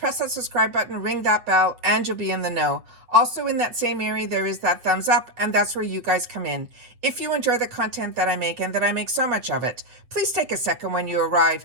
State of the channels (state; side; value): late; left; 8.1 ms